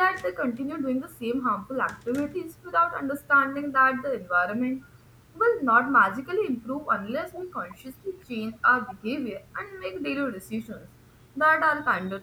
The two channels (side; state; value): both; identical; correlation 1.00